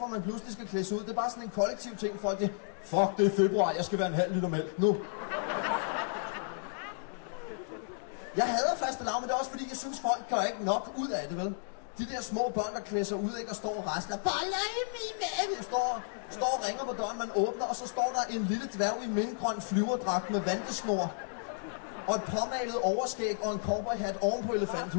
man pludselig skal klædes ud. Det er bare sådan en kollektiv ting. Folk det, fuck, det er februar. Jeg skal være en halv liter mælk nu. Jeg hader fastelavn, men det er også fordi, jeg synes, folk gør ikke nok ud af det, vel? De der små børn, der klæder sig ud, ikke, og står og rasler. Boller i min mave! Står og ringer på døren, man åbner, og så står der en lille dværg i mintgrøn flyverdragt med vandesnor. Og et påmalet overskæg og en cowboyhat oven på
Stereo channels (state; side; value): silent; right; digital silence